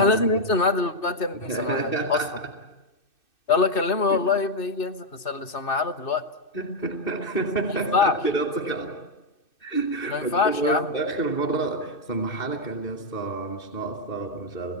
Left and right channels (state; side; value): late; right; 2.6 ms